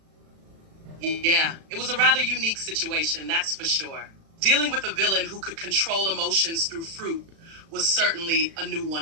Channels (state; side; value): late; left; 36 ms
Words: Yeah, it was a rather unique situation, that's for sure. Dealing with a villain who could control emotions through fruit was certainly a new